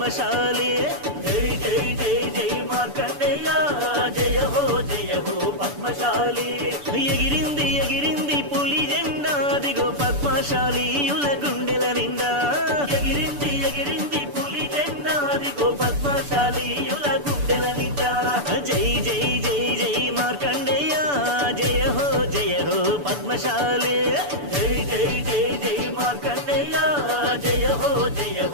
జై జై జై జై మార్కండేయ జయ హో పద్మశాలి ఎగిరింది ఎగిరింది పులి జెండా దిగో పద్మశాలీయుల గుండెల నిండా ఎగిరింది ఎగిరింది పులి జెండా దిగో పద్మశాలీయుల గుండెల నిండా జై జై జై జై మార్కండేయ జయ హో పద్మశాలి జై జై జై జై మార్కండేయ జయ హో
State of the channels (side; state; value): left; late; 6.9 ms